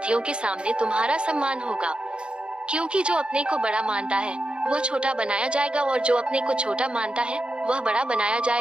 के सामने तुम्हारा सम्मान होगा। क्योंकि जो अपने को बड़ा मानता है वह छोटा बनाया जाएगा और जो अपने को छोटा मानता है वह बड़ा बनाया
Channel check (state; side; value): late; left; 0.054 ms